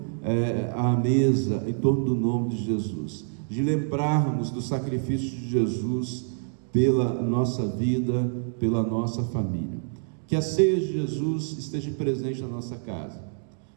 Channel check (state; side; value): silent; left; digital silence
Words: à mesa em torno do nome de Jesus, de lembrarmos do sacrifício de Jesus pela nossa vida, pela nossa família. Que a ceia de Jesus esteja presente na nossa casa,